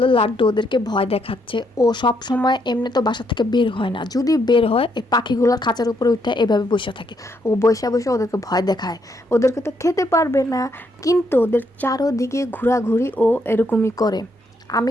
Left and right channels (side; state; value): both; normal; correlation 0.75